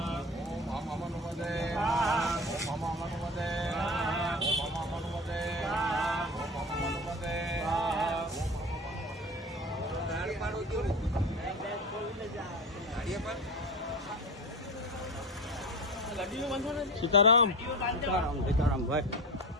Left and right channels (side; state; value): both; normal; correlation 0.30